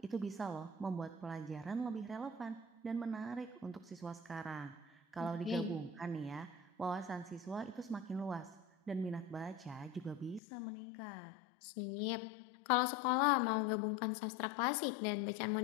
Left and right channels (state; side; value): drops out; right; at 10.4 s